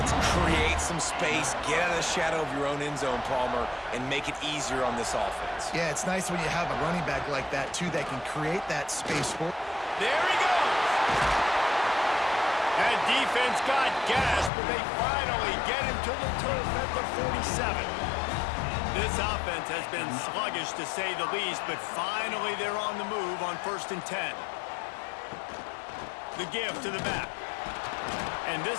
Create some space, get out of the shadow of your own end zone, Palmer, and make it easier on this offense. Yeah, it's nice when you have a running back like that, too, that can create that space for. There he goes! That defense got gas, but they finally get him to the turf at the 47. This offense has been sluggish, to say the least, but finally they're on the move on 1st and 10. The give to the back. And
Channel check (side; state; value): right; drops out; at 14.5 s